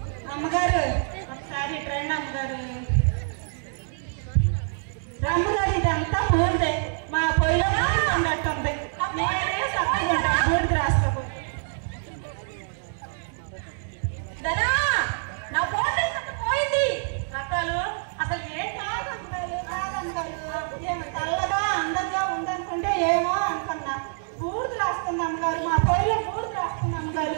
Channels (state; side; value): silent; left; digital silence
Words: అమ్మగారు. ఒకసారి ట్రెండ్ అమ్మగారు. అమ్మగారు ఇదంతా పూర్తే మా పొయ్యిలో ఉన్నట్టుంది. నేనే తప్పుకుంటాను బూడిద రాసుకో. ధనా, నా ఫోన్ పోయింది. రకాలు అసలు ఏం కాదమ్మగారు. ఏమో తెల్లగా అందంగా ఉందనుకుంటే ఏమో అనుకున్నా. బూడిద రాస్తుంది అమ్మగారు. మా పొయ్యిలో బూడిద రాస్తుంది అమ్మగారు.